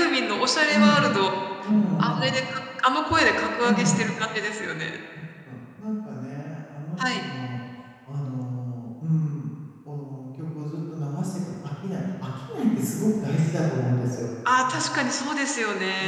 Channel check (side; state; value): both; identical; correlation 1.00